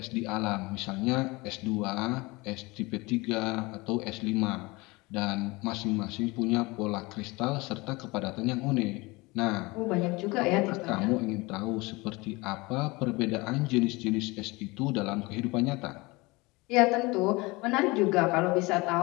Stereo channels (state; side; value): quieter; right; 23.8 dB